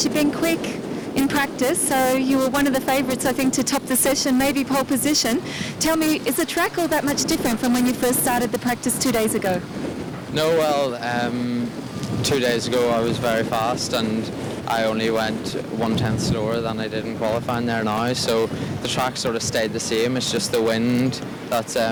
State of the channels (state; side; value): identical; both; correlation 1.00